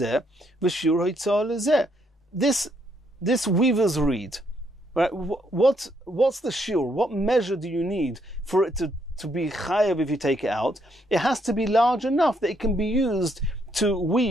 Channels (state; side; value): normal; both; correlation 0.73